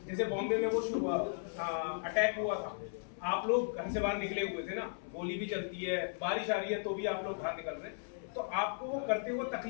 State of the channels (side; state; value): right; silent; 54 dB below the other